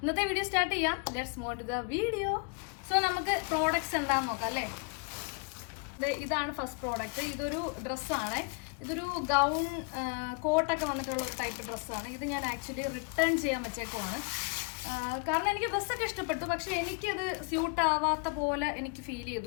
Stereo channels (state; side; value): quieter; right; 33.1 dB